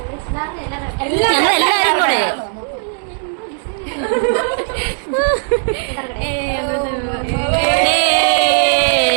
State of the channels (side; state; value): left; silent; 61 dB below the other